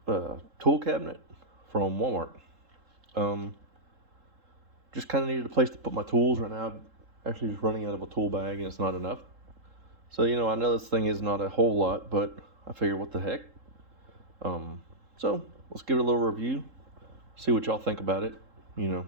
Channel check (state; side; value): late; left; 3.7 ms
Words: tool cabinet from Walmart. Just kind of needed a place to put my tools right now. I'm actually just running out of a tool bag and it's not enough. So, I know this thing is not a whole lot, but I figured what the heck. So let's give it a little review, see what y'all think about it,